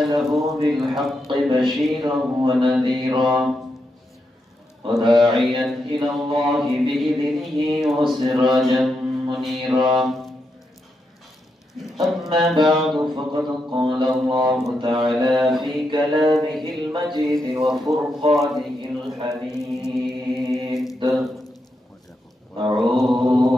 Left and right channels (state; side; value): normal; both; correlation 0.84